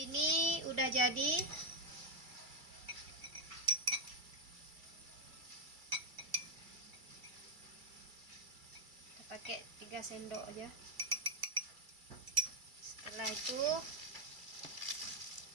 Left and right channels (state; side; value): late; left; 2.3 ms